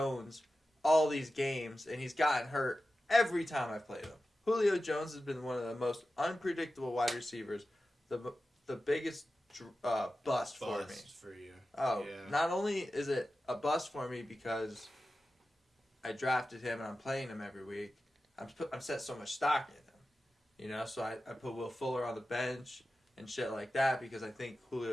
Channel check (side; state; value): both; normal; correlation 0.93